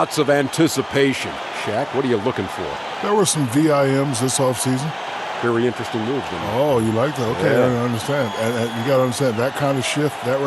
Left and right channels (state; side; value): identical; both; correlation 1.00